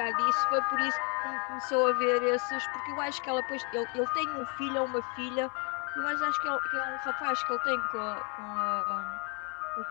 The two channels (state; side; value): quieter; right; 35.0 dB